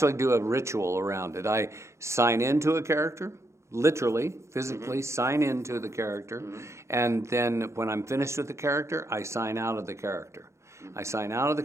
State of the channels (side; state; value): left; late; 0.14 ms